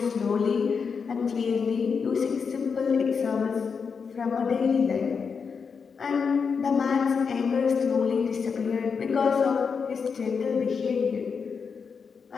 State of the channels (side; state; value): right; quieter; 5.8 dB